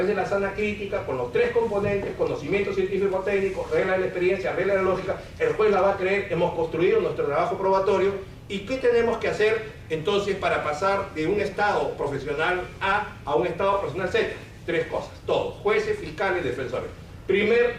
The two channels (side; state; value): both; identical; correlation 1.00